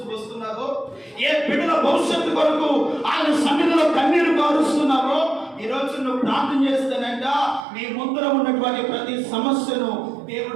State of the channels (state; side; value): drops out; left; at 7.7 s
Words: వస్తున్నారో, ఏ బిడ్డల భవిష్యత్తు కొరకు ఆయన సన్నిధిలో కన్నీరు కారుస్తున్నారో, ఈ రోజు నువ్వు ప్రార్థన చేస్తానంట నీ ముందర ఉన్నటువంటి ప్రతి సమస్యను